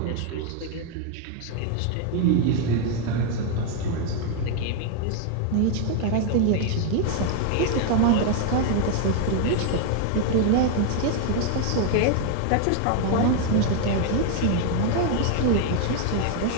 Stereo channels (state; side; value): different; both; correlation 0.00